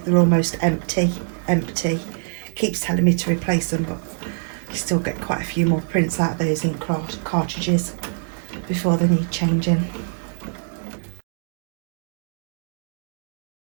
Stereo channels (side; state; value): left; silent; digital silence